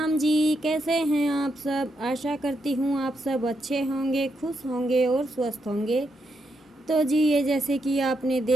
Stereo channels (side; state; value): both; normal; correlation 0.81